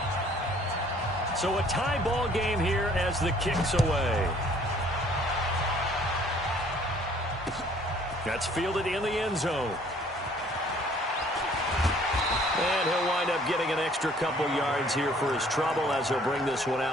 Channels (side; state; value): both; normal; correlation 0.58